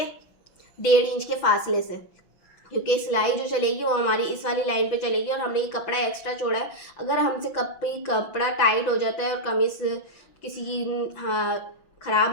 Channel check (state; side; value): late; right; 5.9 ms